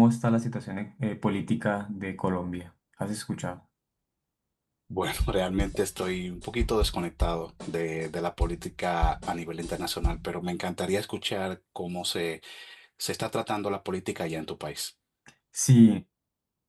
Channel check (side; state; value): both; identical; correlation 1.00